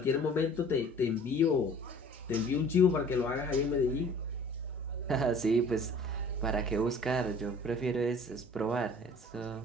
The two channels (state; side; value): normal; both; correlation 0.49